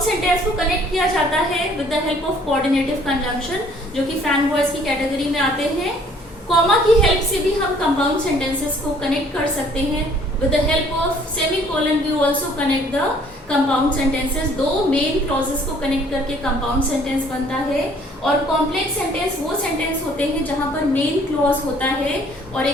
सेंटेंस को कनेक्ट किया जाता है with the help of coordinative conjunction, जो कि फैन वॉइस की कैटेगरी में आते हैं। कॉमा की हेल्प से भी हम कंपाउंड सेंटेंसेस को कनेक्ट कर सकते हैं। With the help of semicolon we also connect the compound sentences। दो मेन क्लॉजेस को कनेक्ट करके कंपाउंड सेंटेंस बनता है। और कॉम्प्लेक्स सेंटेंस वो सेंटेंस होते हैं जहां पर मेन क्लॉज होता है और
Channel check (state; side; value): normal; both; correlation 0.58